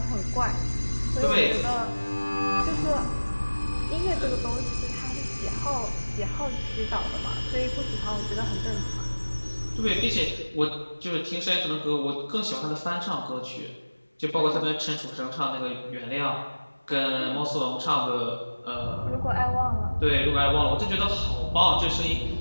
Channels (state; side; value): inverted; both; correlation -1.00